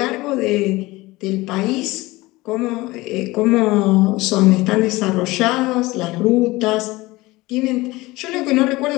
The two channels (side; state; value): right; quieter; 20.4 dB